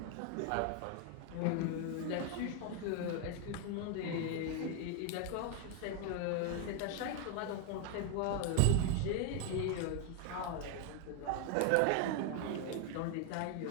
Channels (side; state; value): both; different; correlation 0.01